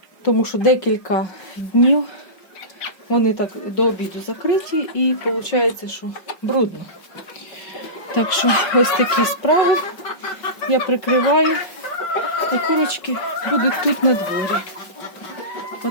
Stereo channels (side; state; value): right; late; 5.4 ms